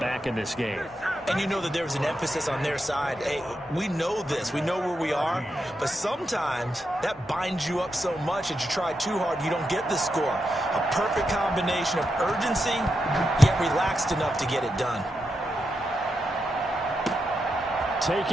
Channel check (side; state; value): both; normal; correlation 0.86